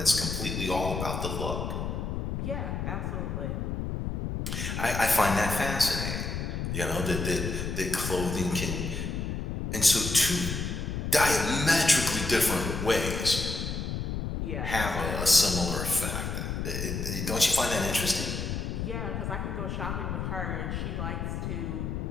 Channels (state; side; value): noise; left; rumble, 3 dB below the sound